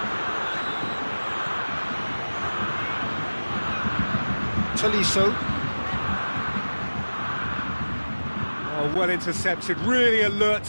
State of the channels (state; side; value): inverted; both; correlation -1.00